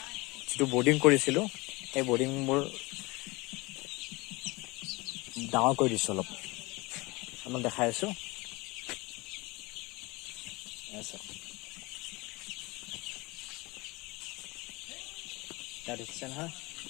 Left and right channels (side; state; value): right; quieter; 23.9 dB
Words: যিটো বৰ্ডিং কৰিছিলোঁ, সেই বৰ্ডিংবোৰ ডাঙৰ কৰি দিছোঁ। অলপ আপোনাক দেখাই আছোঁ। তাত দেখিছে নহয়,